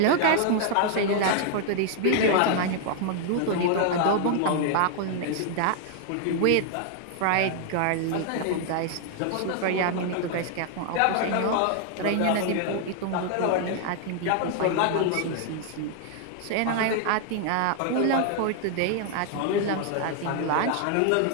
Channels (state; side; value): different; both; correlation 0.00